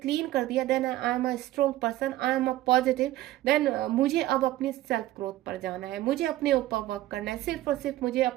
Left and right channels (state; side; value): quieter; left; 15.2 dB